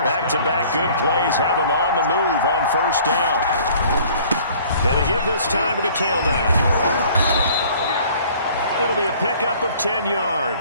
Back-to-back good plays have him on the move on 1st down. And to give this time to the tailback. It'll be a pickup of 10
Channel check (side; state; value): both; inverted; correlation -0.53